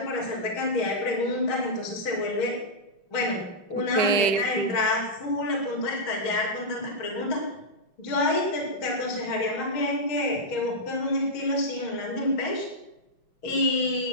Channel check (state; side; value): late; right; 5.2 ms